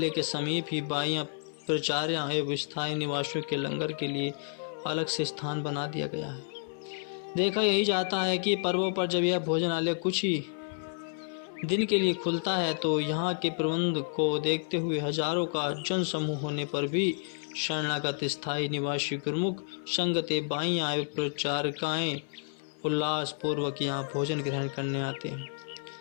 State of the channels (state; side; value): silent; right; 58 dB below the other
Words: के समीप ही बाइयाँ प्रचार्या एवं स्थायी निवासियों के लंगर के लिए अलग से स्थान बना दिया गया है। देखा यही जाता है कि पर्वों पर जब यह भोजनालय कुछ ही दिन के लिए खुलता है तो यहाँ के प्रबंध को देखते हुए हजारों का जन समूह होने पर भी शरणागत स्थायी निवासी गुरुमुख संगते बाइयाँ एवं प्रचारकाएँ उल्लास पूर्वक यहाँ भोजन ग्रहण करने आते हैं।